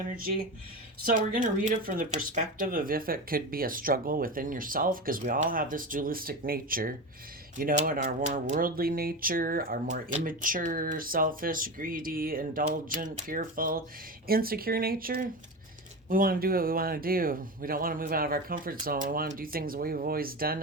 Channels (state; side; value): normal; both; correlation 0.23